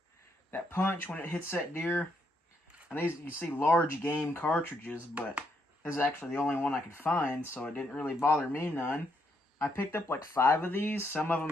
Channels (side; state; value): both; normal; correlation 0.76